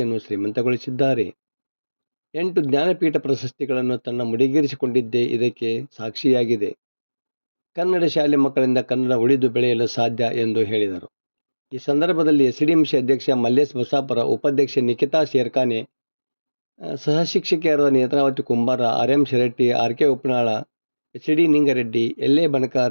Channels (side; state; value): both; inverted; correlation -1.00